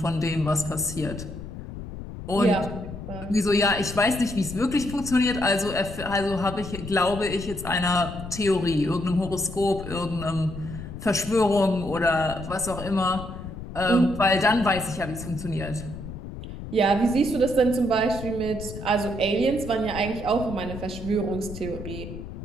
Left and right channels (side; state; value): left; noise; rumble, 10 dB below the sound